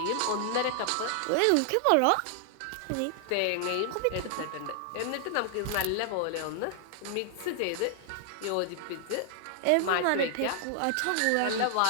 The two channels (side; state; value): both; different; correlation 0.00